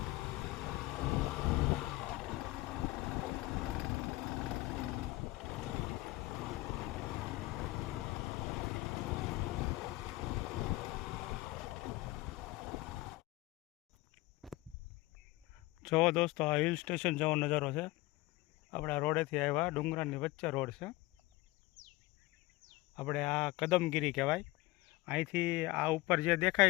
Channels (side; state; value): right; quieter; 20.2 dB